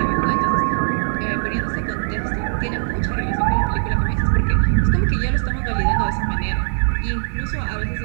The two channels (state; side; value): silent; left; digital silence